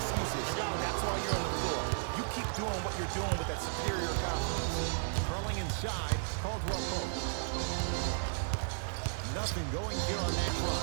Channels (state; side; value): silent; left; 55 dB below the other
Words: That's why you're on the floor. You keep doing what you're doing with that superior confidence. Curling inside, Caldwell Pope. Nothing going here on that try.